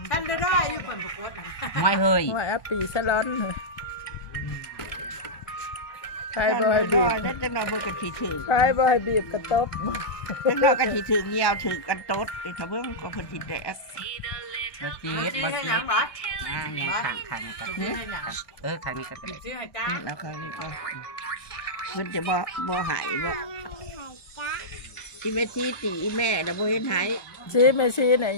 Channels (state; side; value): late; right; 1.2 ms